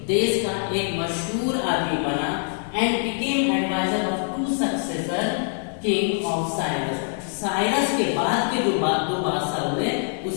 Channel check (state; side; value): silent; right; 61 dB below the other